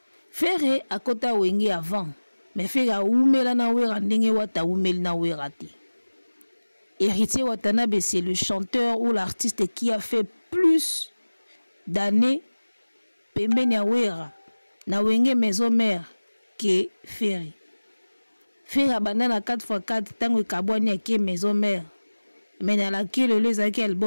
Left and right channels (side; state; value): both; inverted; correlation -1.00